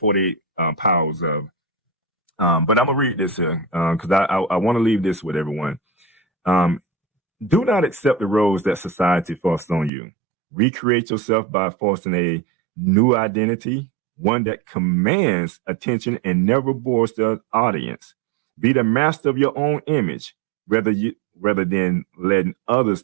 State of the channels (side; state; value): left; drops out; at 9.9 s